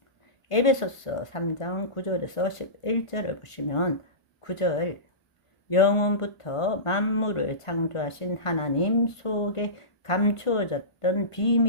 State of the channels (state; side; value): late; right; 1.4 ms